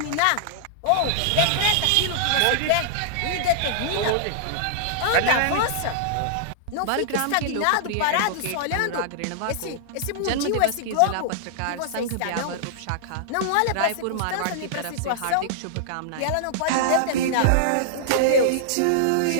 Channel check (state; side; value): different; both; correlation -0.01